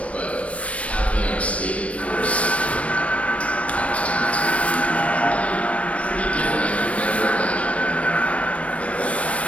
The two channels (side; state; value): right; late; 0.064 ms